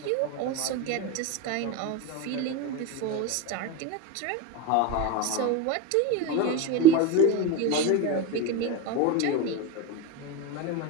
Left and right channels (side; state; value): both; different; correlation 0.06